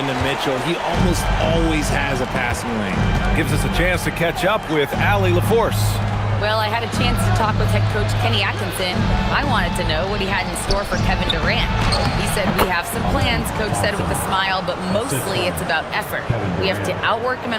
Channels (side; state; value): both; identical; correlation 1.00